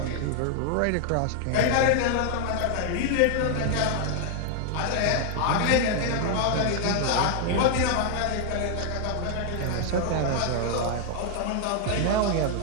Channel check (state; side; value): different; both; correlation 0.00